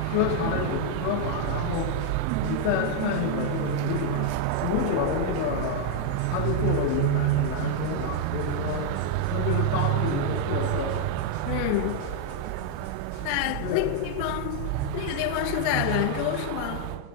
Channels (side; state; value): both; different; correlation 0.00